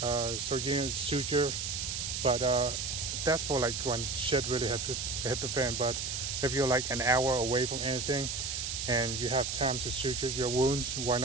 getting a suture, but that's for like when shit really hit the fan. But if you're like an hour away from anything and you have time to suture your wounds, why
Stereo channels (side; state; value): right; noise; hiss, 3 dB below the sound